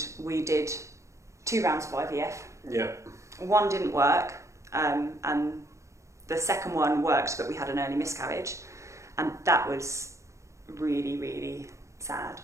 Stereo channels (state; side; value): late; left; 0.14 ms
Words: we did 2 rounds of IVF. Yeah. One didn't work, and the second one worked, but we had an early miscarriage. And that was really, really sad.